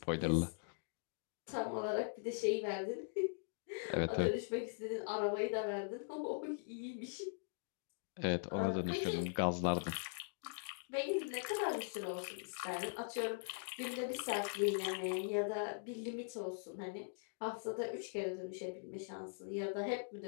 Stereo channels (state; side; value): silent; right; digital silence